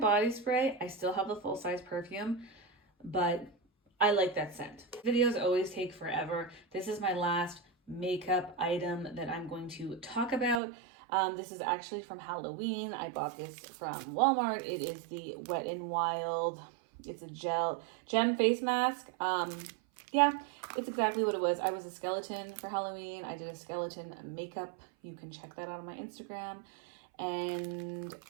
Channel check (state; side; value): drops out; left; at 10.6 s